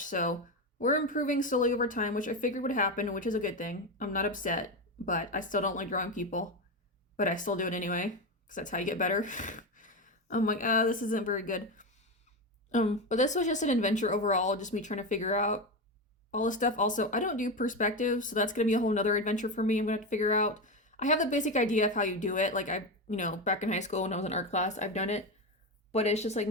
So we're improving slowly over time, which I figured would happen, which is a good thing. I'm not upset, but I still don't like drawing people, but I still do it anyway because that's how you get better. I'm like, this isn't very good. But this was just an adventure overall, just me trying to figure out all this stuff. Also, I don't do perspective, so that's gonna be a whole nother adventure for me. I'm gonna have to figure out. I have the basic idea of how you do it. Like back in high school when I was in art class, I've done it. But it's just like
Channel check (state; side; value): normal; both; correlation 0.16